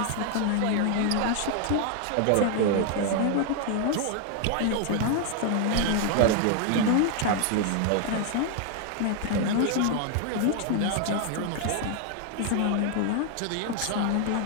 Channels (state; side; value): different; both; correlation 0.00